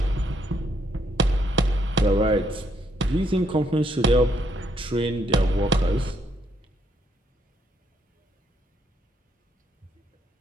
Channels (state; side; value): normal; both; correlation 0.73